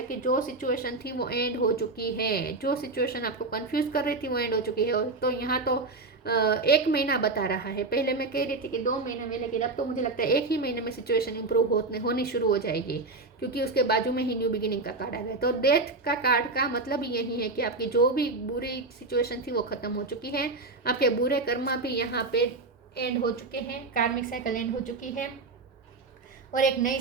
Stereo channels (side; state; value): left; quieter; 3.6 dB